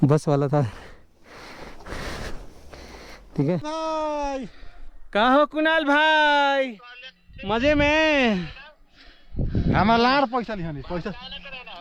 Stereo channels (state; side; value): identical; both; correlation 1.00